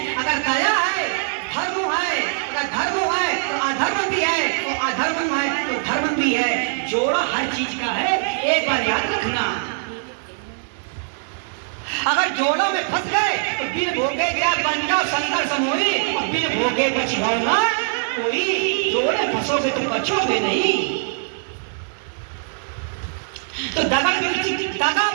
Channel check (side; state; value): left; silent; 64 dB below the other